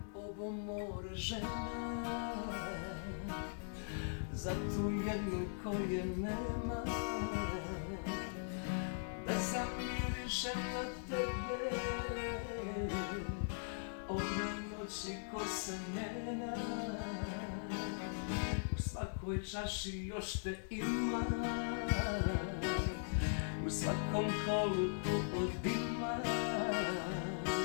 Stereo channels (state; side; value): silent; right; digital silence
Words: ovo more žena za tu jednu koje nema, da zamirišem na tebe ove noći ko se njena. U svakoj čaši još te ima, u svakom kolu tu od dima,